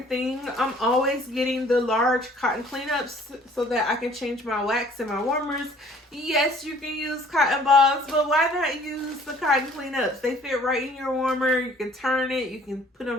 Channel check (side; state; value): both; normal; correlation 0.55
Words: thing, I'm always getting the large cotton cleanups so that I can change my wax and my warmers. Yes, you can use cotton balls, but why not use the cotton cleanups? They fit right in your warmer. You can turn it. You can put them